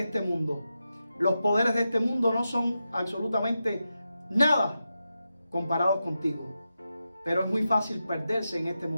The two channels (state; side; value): inverted; both; correlation -0.89